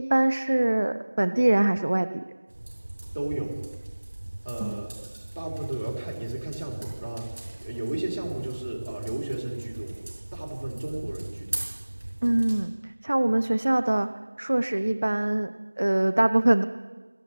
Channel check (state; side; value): inverted; both; correlation -1.00